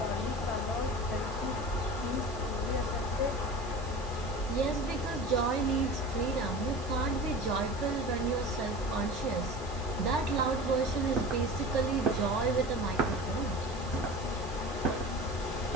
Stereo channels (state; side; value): noise; right; hiss, 19 dB below the sound